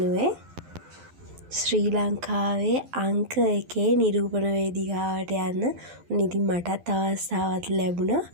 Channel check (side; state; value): left; late; 12 ms